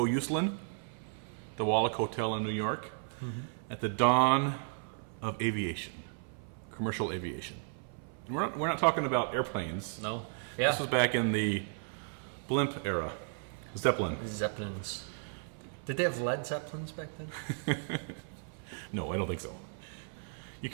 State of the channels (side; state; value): left; silent; 55 dB below the other